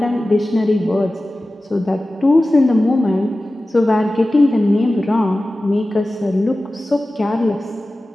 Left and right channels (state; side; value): normal; both; correlation 0.96